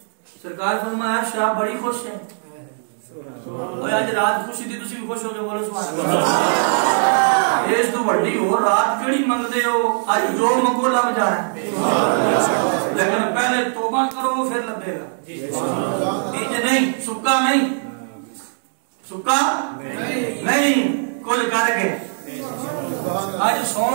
سرکار فرمایا شاہ بڑی خوش ہے اوے اج رات خوشی دی تسی بھی خوش ہو کے بولو سبحان اللہ اس تو بڑی ہو رات کیڑی منگدے ہو اج جو منگو لب جانا ہے لیکن پہلے توبہ کرو پھر لبے گا یہ نہیں سکا نہیں سکا نہیں کل کر کے اج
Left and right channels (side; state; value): left; silent; digital silence